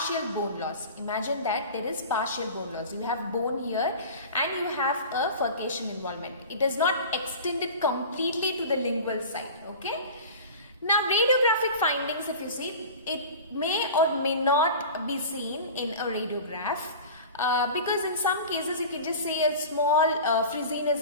bone loss. Imagine that there is partial bone loss. You have bone here and you have a furcation involvement. It is not extended completely to the lingual side, okay. Now radiographic findings, if you see, it may or may not be seen in a radiograph. Because in some cases you can just see a small frizziness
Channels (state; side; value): inverted; both; correlation -0.35